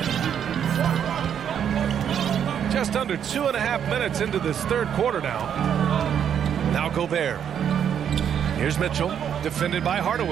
Just under 2.5 minutes into this third quarter now. Now Gobert. Here's Mitchell, defended by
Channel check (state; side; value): quieter; left; 8.6 dB